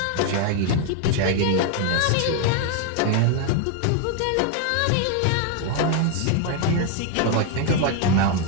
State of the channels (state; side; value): different; both; correlation 0.01